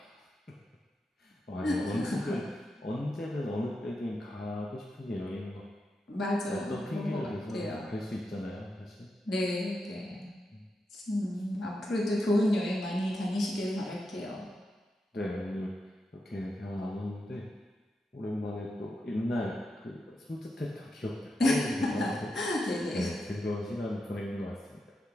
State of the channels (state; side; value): normal; both; correlation 0.87